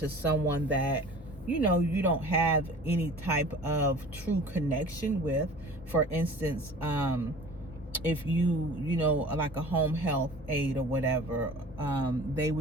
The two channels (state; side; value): normal; both; correlation 0.42